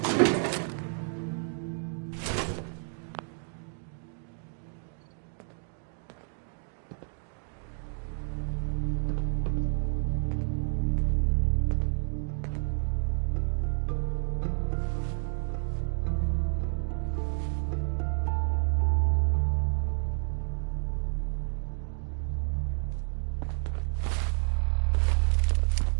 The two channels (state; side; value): silent; left; 58 dB below the other